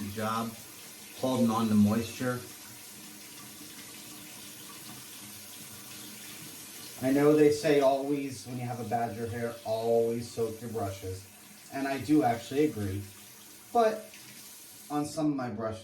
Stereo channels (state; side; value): identical; both; correlation 1.00